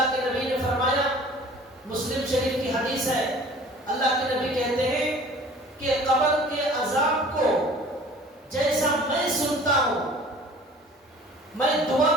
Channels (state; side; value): normal; both; correlation 0.47